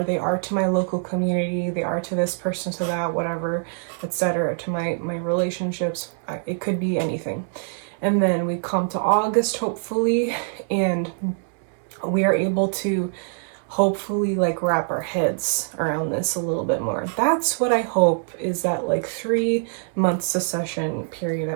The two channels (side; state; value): left; silent; 63 dB below the other